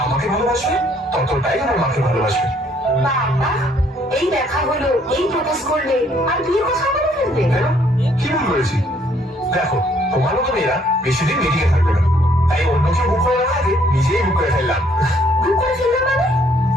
আমাকে ভালোবাসবে ততটাই আমার মাকে ভালোবাসবে। বাবা, এই দেখা হলো, এই প্রপোজ করলে আর বিয়ের কথা বলে ফেলবে? কি ভুল করেছি? দেখো, তোমার মতো মেয়েরা বেশি দিন মেটিকে থাকবে না, তাই অন্য কেউ বুক করে না আগে নিজেই বুক করে ফেললাম। বুক করে ফেললাম মানে?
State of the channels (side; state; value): both; normal; correlation 0.65